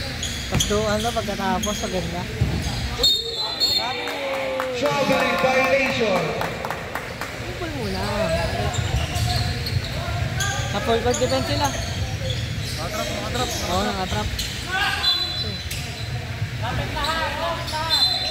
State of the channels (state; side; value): identical; both; correlation 1.00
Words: Tapos doon na pagkatapos, maganda. Traveling violation. Kupol muna. Na-full court defense sila. Nakatrap. Oo, nakatrap. Lapit lahat.